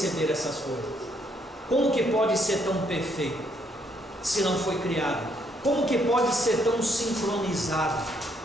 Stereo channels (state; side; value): normal; both; correlation 0.71